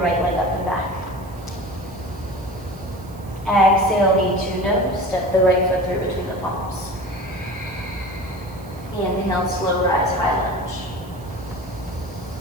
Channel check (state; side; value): noise; right; hiss, 24 dB below the sound